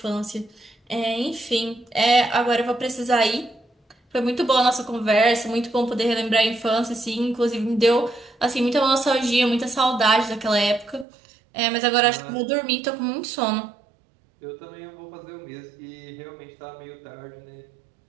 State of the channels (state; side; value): drops out; left; at 11.1 s